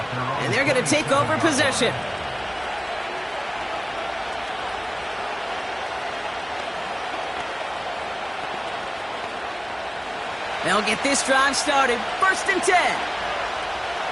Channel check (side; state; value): both; identical; correlation 1.00